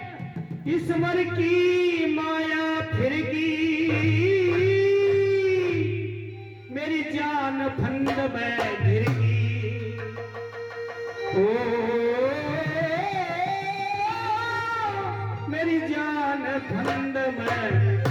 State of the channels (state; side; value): identical; both; correlation 1.00